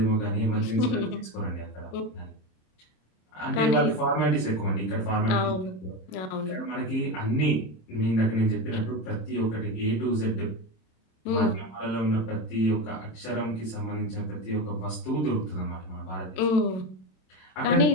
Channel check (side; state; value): right; late; 27 ms